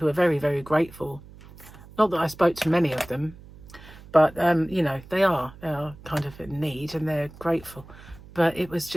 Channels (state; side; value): noise; right; hum, 20 dB below the sound